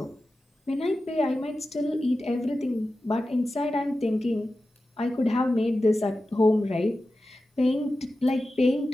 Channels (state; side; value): normal; both; correlation 0.93